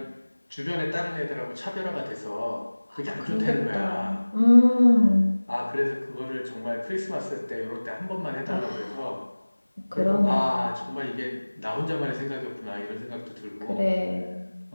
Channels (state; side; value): inverted; both; correlation -1.00